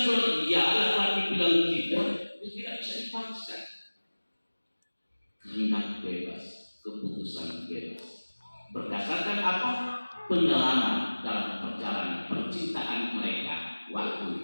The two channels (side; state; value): both; inverted; correlation -1.00